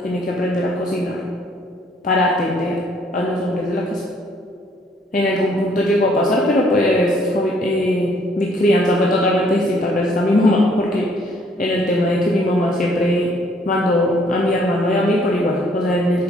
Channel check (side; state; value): both; normal; correlation 0.64